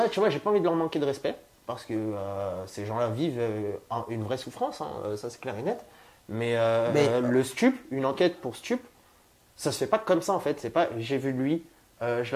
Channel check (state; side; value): identical; both; correlation 1.00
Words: tu vois, j'ai pas envie de leur manquer de respect parce que ces gens-là vivent une vraie souffrance, hein, ça c'est clair et net. Mais le stup, une enquête pour stup, ça se fait pas comme ça en fait. C'est pas j'ai vu lui, je